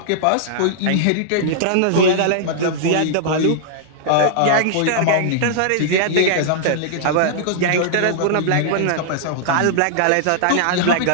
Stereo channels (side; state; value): both; different; correlation -0.01